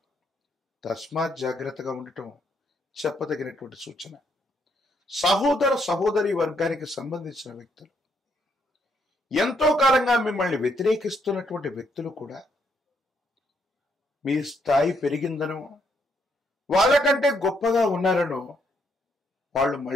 తస్మాత్ జాగ్రత్తగా ఉండటం చెప్పదగినటువంటి సూచన. సహోదర సహోదరి వర్గానికి సంబంధించిన వ్యక్తులు, ఎంతో కాలంగా మిమ్మల్ని వ్యతిరేకిస్తున్నటువంటి వ్యక్తులు కూడా మీ స్థాయి పెరిగిందనో, వాళ్ళకంటే గొప్పగా ఉన్నారనో వాళ్ళు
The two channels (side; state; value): both; normal; correlation 0.74